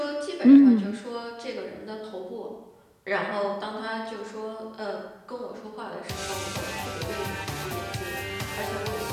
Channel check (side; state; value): both; identical; correlation 1.00